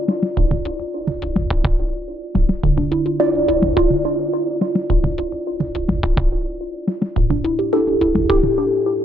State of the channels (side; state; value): both; normal; correlation 0.80